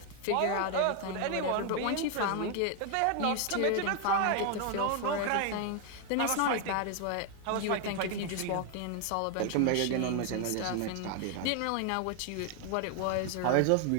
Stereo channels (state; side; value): different; both; correlation 0.01